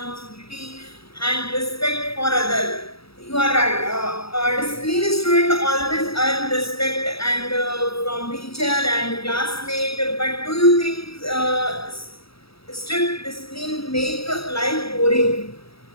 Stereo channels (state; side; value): late; right; 0.76 ms